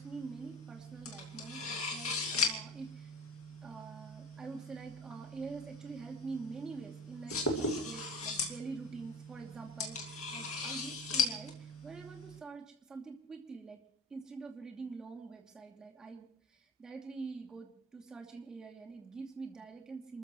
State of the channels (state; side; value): normal; both; correlation 0.38